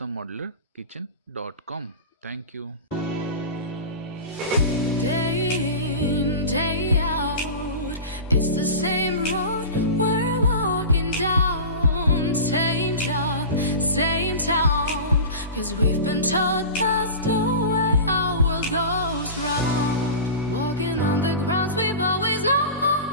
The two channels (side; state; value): both; inverted; correlation -0.30